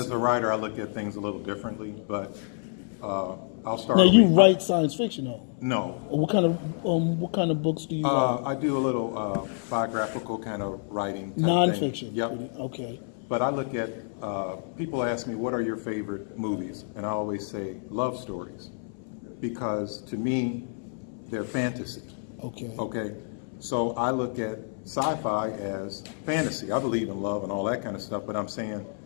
a writer, I look at things a little differently, but I'll start. Now you write science fiction, though. No. What kind of books do you write? I do a little biographical kind of writing. Type Nonfiction. thing. Yep. Okay. But I look at people ask me, what are your favorite movies? And I always say love stories, because to me, they're fantasy. Okay. Okay. So I look at sci-fi as fantasy. I believe in love and all that kind of stuff, but I'm saying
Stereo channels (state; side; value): silent; right; 59 dB below the other